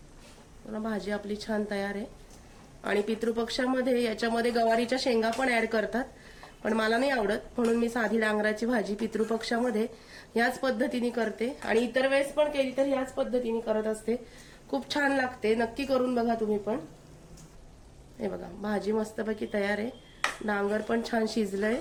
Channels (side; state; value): both; identical; correlation 1.00